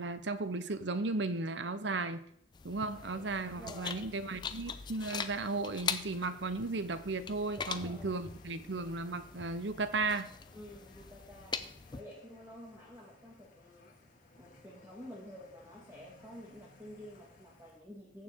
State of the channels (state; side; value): normal; both; correlation 0.21